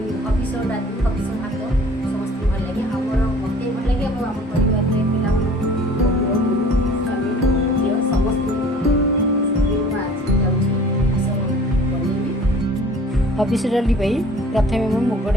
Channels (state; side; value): normal; both; correlation 0.48